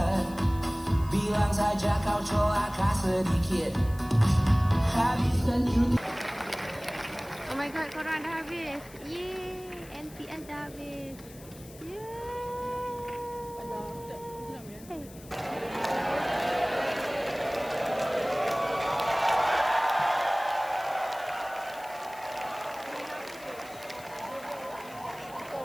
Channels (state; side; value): noise; left; hiss, 20 dB below the sound